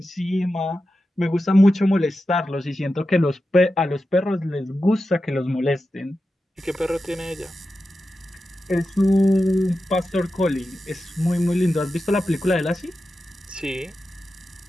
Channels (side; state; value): both; normal; correlation 0.91